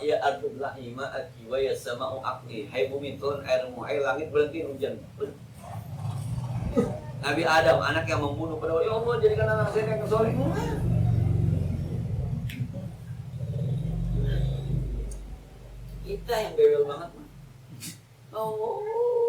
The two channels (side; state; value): both; identical; correlation 1.00